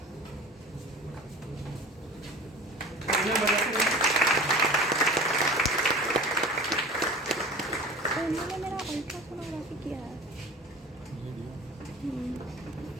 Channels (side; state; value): both; normal; correlation 0.38